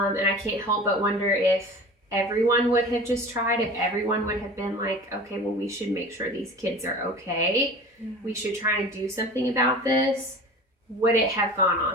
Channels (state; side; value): normal; both; correlation 0.38